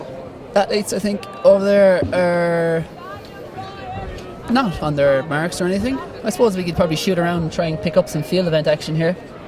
Athletes, I think, over there are not on their marks or anything. I suppose we could probably shoot around and try and pick up some field event action here.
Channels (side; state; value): both; identical; correlation 1.00